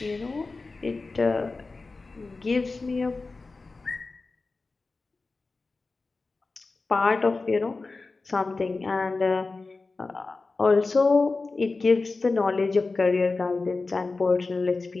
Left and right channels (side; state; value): right; quieter; 3.8 dB